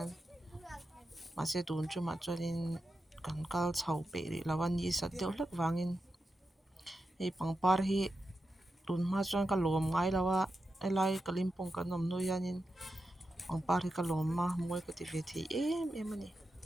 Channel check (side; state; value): both; normal; correlation 0.89